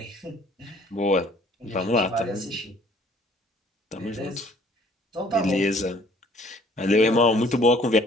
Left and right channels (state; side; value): normal; both; correlation 0.57